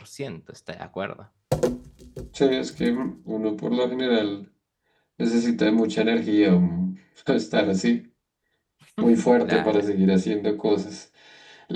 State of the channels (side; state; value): both; identical; correlation 1.00